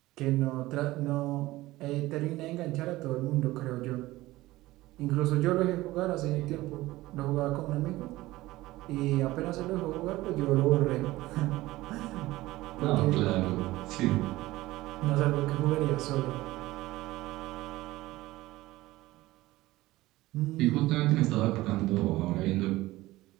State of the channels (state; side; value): quieter; left; 18.0 dB